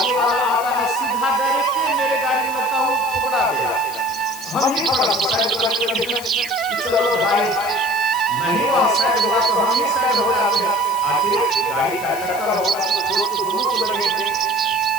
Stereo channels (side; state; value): left; noise; hiss, 13 dB below the sound